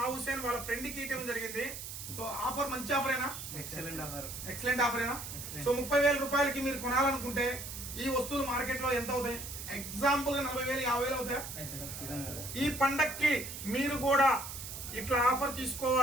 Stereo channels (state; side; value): noise; right; hiss, 9 dB below the sound